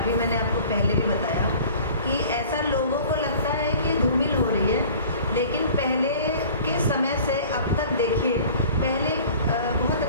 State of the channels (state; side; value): inverted; both; correlation -0.46